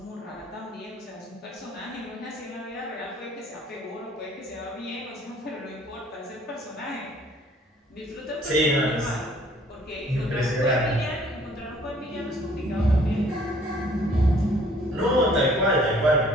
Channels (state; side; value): normal; both; correlation 0.57